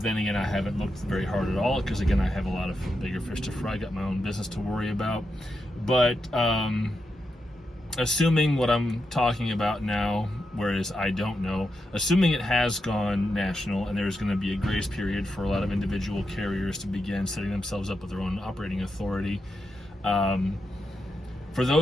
again, I haven't looked very hard at all because, again, I have a lot of bigger fish to fry. Got my own business to worry about. But assuming what I'm talking about now, whereas I don't know, assuming it has gone national and there's going to be a grace period for a lot of individual carriers to begin setting themselves up with their own operating authority. For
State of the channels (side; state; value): both; normal; correlation 0.86